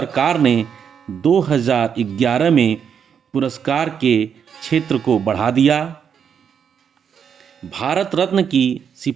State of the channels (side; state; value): left; quieter; 7.5 dB